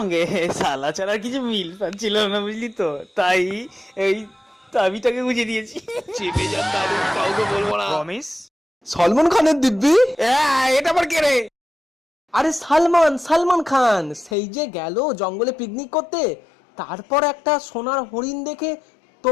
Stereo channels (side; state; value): right; drops out; at 14.4 s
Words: সালা ছাড়া কিছু মিল পাচ্ছিল না, বুঝলি তো, তাই এই চাবিটাকে গুঁজে দিয়েছি। চেপে যান দাদু, কাউকে বলবো না। প্রমিস। সলমান খানের দিব্যি? এটা আবার কে রে? আরে সালমান খান, সেই যে গেল জঙ্গলে পিকনিক করতে, তারপর একটা সোনার হরিণ দেখে